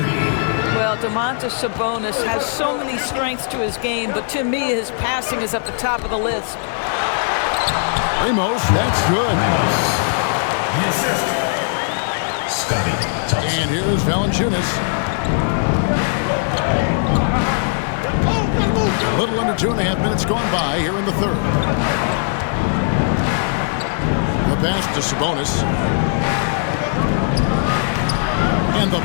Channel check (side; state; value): right; silent; digital silence